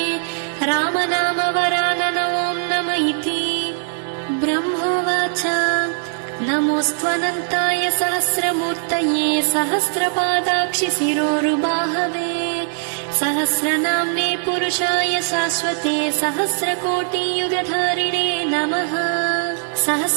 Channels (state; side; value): silent; left; digital silence